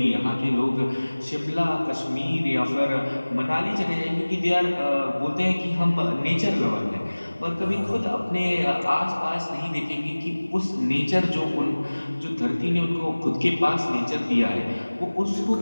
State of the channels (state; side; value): inverted; both; correlation -1.00